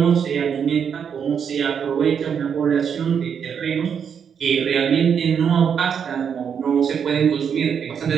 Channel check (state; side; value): quieter; left; 7.4 dB